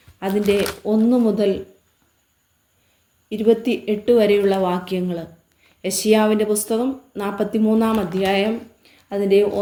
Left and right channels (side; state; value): both; identical; correlation 1.00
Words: അതിൻ്റെ 1 മുതൽ 28 വരെയുള്ള വാക്യങ്ങൾ. യെശയ്യാവിൻ്റെ പുസ്തകം 43 അധ്യായം അതിൻ്റെ